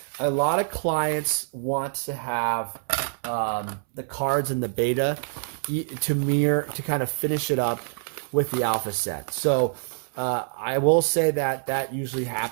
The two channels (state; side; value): silent; left; 61 dB below the other